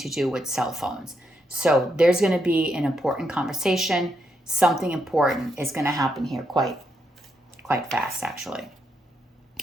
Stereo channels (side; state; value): both; normal; correlation 0.80